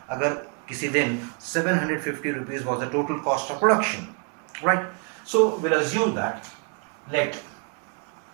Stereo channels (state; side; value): quieter; left; 38.4 dB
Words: अगर किसी दिन 750 rupees was the total cost of production, right? So we'll assume that let